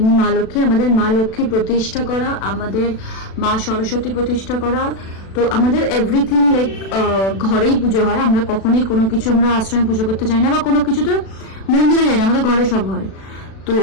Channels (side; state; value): right; late; 36 ms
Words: মা লক্ষ্মী, আমাদের মা লক্ষ্মী প্রতিষ্ঠা করা, আমাদের মা সরস্বতী প্রতিষ্ঠা করা। তো আমাদের এভরিথিং লাইক ঘরেই পুজো হয়। আমরা কখনোই কোনো কিছু আমরা আশ্রমে পুজো করতে যাই না, বা কোনো কিছু তো মন্দিরে যাই না, আমাদের ঘরে সব হয়। তো